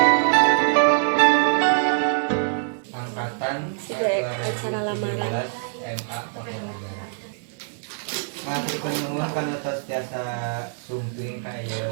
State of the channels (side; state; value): left; silent; digital silence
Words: Angkatan Acara lamaran. MA Tapanegara. Matur nuwun kana tiasa sumping ka